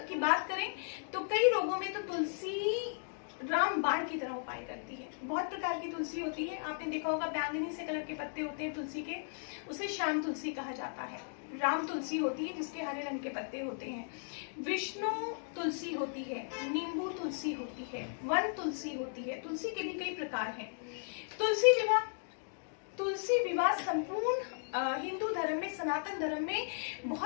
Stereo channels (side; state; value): right; silent; digital silence